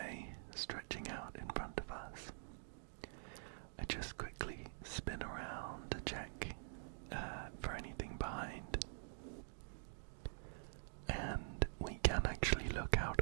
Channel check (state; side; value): silent; left; digital silence